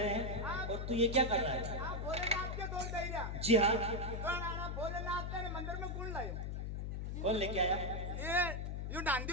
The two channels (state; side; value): noise; left; hum, 3 dB below the sound